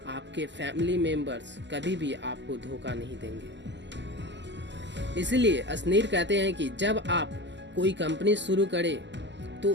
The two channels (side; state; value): left; late; 0.52 ms